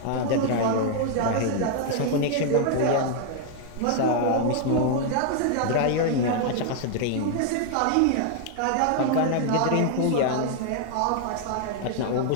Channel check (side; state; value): both; different; correlation 0.00